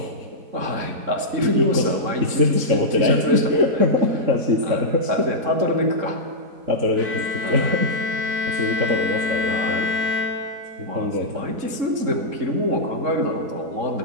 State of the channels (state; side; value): late; left; 3.7 ms